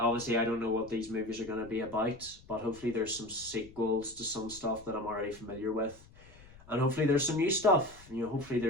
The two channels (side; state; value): left; noise; rumble, 22 dB below the sound